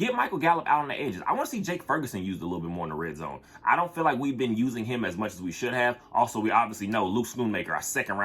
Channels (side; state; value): both; identical; correlation 1.00